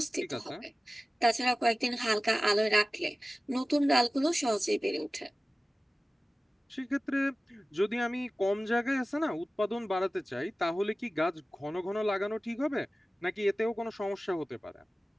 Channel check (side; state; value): both; normal; correlation 0.96